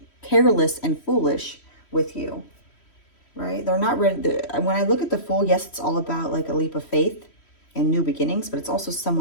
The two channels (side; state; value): right; late; 3.1 ms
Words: foolish with you, right? They're not ready. When I look at the Fool, yes, it's all about like a leap of faith and new beginnings, but it's also